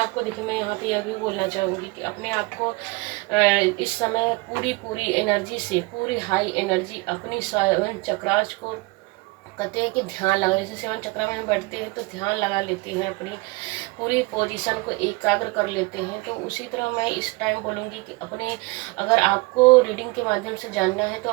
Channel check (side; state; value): left; quieter; 24.8 dB